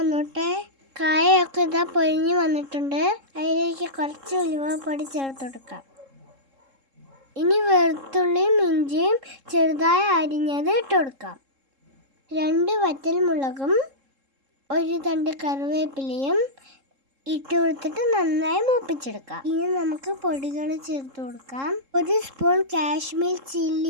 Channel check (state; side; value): late; left; 3.7 ms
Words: കായൊക്കെ ഇതാ പൊരിഞ്ഞു വന്നിട്ടുണ്ട്. അതിലേക്ക് കുറച്ച് ഉലുവപ്പൊടി ചേർത്ത് കൊടുക്കാം. ഇനി വെളുത്തുള്ളിയും ഇഞ്ചിയും ചെറുതായി അരിഞ്ഞത് ഇട്ട് കൊടുക്കാം. 2 വറ്റൽമുളകും 1 തണ്ട് കറിവേപ്പിലയും ഇട്ട് കൊടുത്തിട്ട് നന്നായി മൂപ്പിച്ചെടുക്കാം. ഇനി നമുക്ക് പൊടികൾ ചേർത്ത് കൊടുക്കാം. 1 സ്പൂൺ കാശ്മീർ